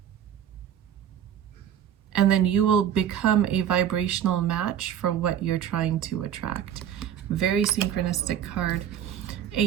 and then you will become a vibrational match for what you're trying to attract. Very synchronistic card.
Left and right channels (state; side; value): quieter; left; 9.7 dB